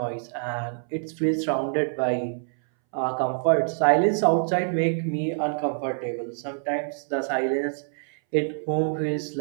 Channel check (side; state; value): left; silent; 61 dB below the other